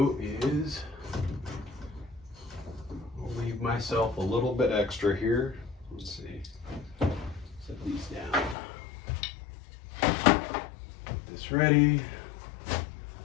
is I'll leave myself a little bit extra here. Let's see, set these down. Get this ready.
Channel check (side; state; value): right; drops out; at 8.6 s